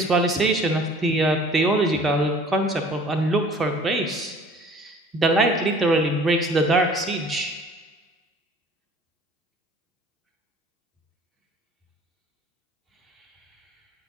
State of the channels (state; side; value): normal; both; correlation 0.50